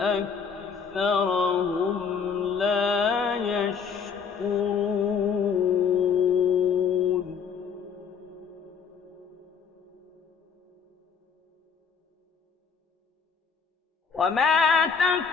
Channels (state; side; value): quieter; right; 6.2 dB